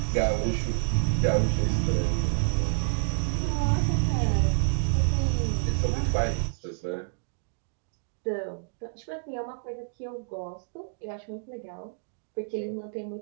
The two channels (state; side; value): silent; left; digital silence